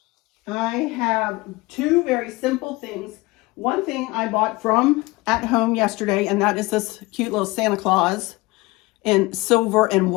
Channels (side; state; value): right; quieter; 22.2 dB